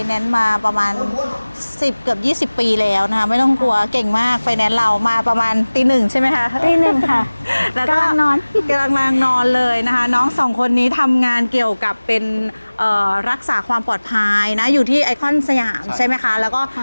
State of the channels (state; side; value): inverted; both; correlation -1.00